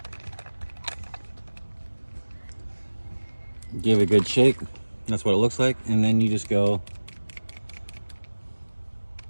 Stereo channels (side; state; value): both; inverted; correlation -1.00